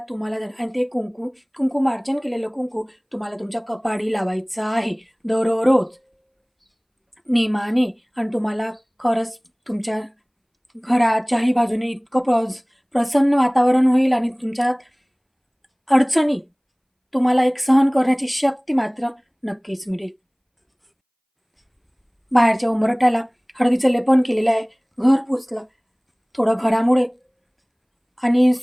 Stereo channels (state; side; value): identical; both; correlation 1.00